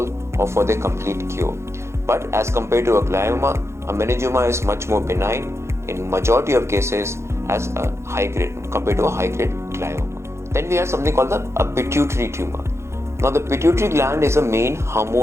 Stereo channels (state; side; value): late; left; 0.13 ms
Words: or for their complete cure. But as compared to a glioma, a meningioma is much more benign in majority of cases as a high grade compared to a high grade glioma. Then we have something called a pituitary tumor. Now, the pituitary gland is a main